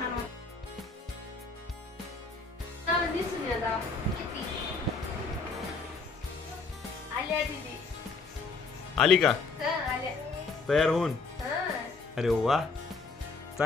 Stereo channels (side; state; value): right; quieter; 4.2 dB